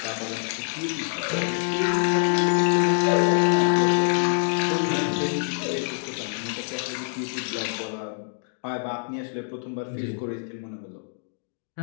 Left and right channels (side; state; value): right; silent; digital silence